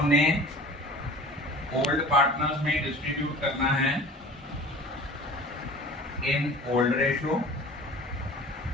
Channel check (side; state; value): both; normal; correlation 0.42